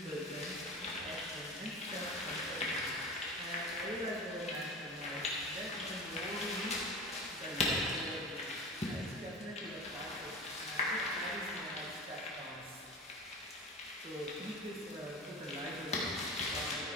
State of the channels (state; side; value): normal; both; correlation 0.32